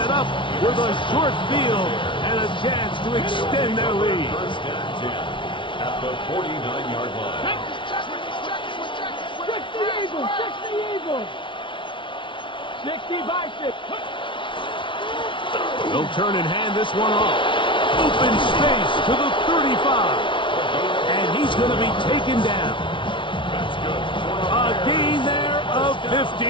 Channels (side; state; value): right; late; 0.24 ms